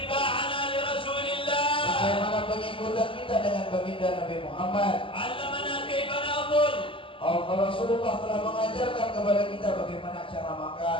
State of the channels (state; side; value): late; right; 0.25 ms